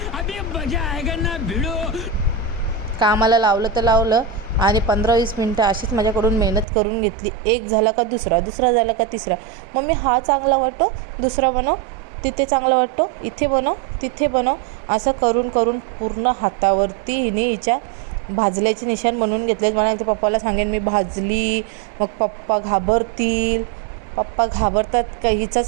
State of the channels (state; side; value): drops out; left; at 6.7 s